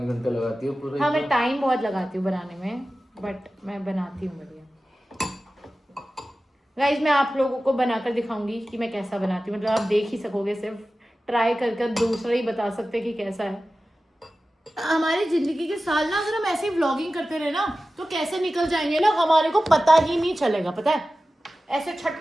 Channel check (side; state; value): both; normal; correlation 0.95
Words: घंटे लगाती है पूरे। हाँ, मैं टाइम बहुत लगाती हूँ बनाने में, बट मैं बनाती हूँ बढ़िया। गाइस, मैं आप लोगों को बनाकर दिखाऊंगी कि मैं कैसा बनाती हूँ। मतलब आप देख ही सकोगे, सिर्फ ट्राई करके दूसरा ही बता सकते कि कैसा है। हमारी जिंदगी के साल ना, अगर हम ऐसे ही व्लॉगिंग करते रहे ना, तो कैसे निकल जाएंगे ना, हमारे को पता ही नहीं चलेगा। पता है, ऐसे छट